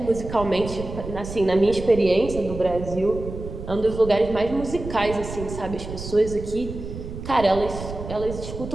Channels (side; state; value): right; noise; rumble, 9 dB below the sound